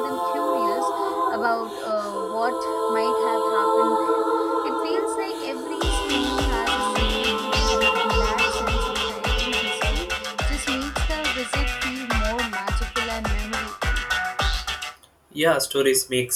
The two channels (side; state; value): both; identical; correlation 1.00